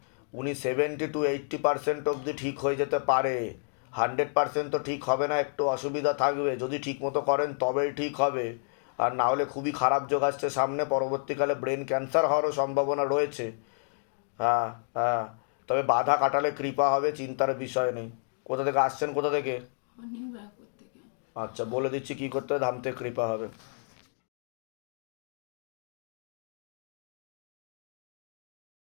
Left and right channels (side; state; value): right; silent; digital silence